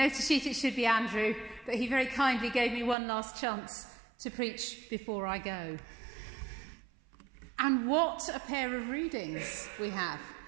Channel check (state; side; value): drops out; left; at 3.0 s